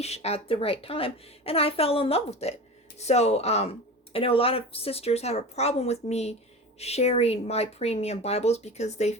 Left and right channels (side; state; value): both; normal; correlation 0.31